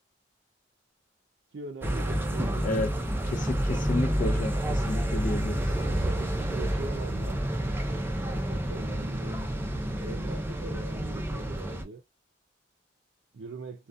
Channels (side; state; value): both; normal; correlation 0.86